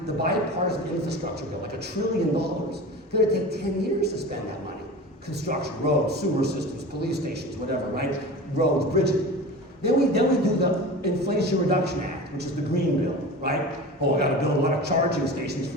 the bipartisan infrastructure bill, like $1 trillion. It's going to take 10 years to spend that money. Construction, roads, sewer systems, police stations, whatever, right? Roads, bridges. Then we do the Inflation Reduction Act, which is the green bill, right? Oh, I got to build a lot of charging stations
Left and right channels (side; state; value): both; normal; correlation 0.33